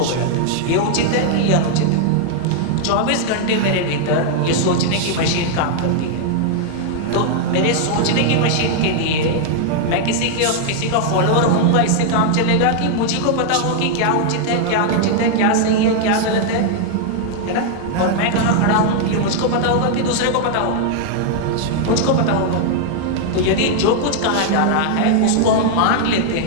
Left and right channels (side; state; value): both; different; correlation 0.00